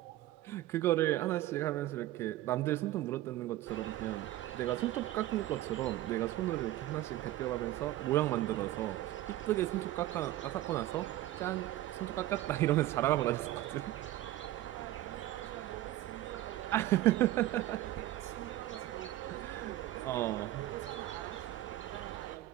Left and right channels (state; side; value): quieter; left; 15.0 dB